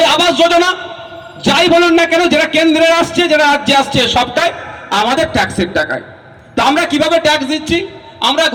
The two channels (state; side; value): identical; both; correlation 1.00